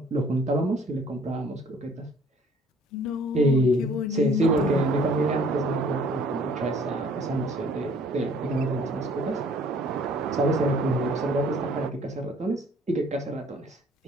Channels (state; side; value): normal; both; correlation 0.56